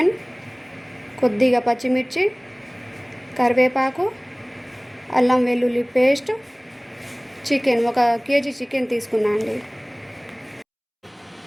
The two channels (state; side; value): identical; both; correlation 1.00